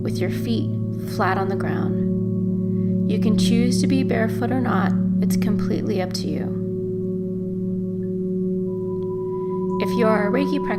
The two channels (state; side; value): identical; both; correlation 1.00